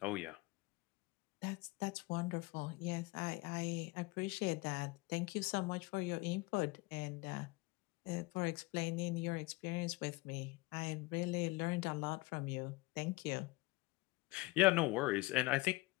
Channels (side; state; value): right; quieter; 22.5 dB